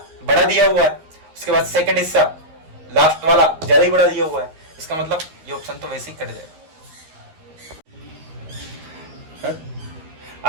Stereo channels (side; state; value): left; late; 13 ms